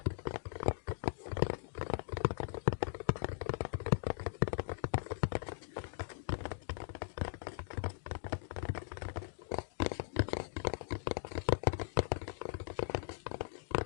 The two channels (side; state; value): right; silent; digital silence